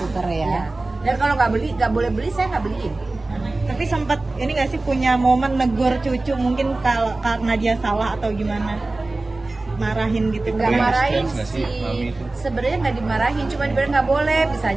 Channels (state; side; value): quieter; left; 3.1 dB